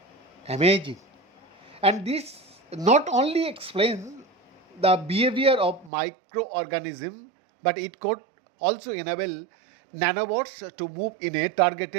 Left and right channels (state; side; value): drops out; left; at 5.9 s